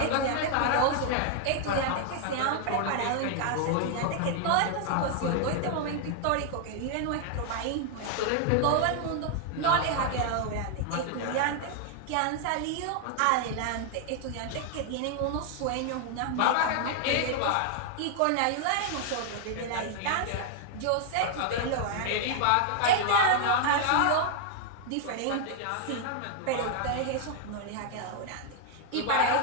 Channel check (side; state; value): both; different; correlation 0.00